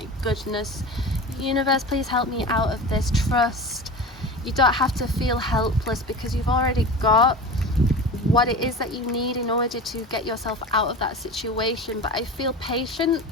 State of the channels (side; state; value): both; normal; correlation 0.32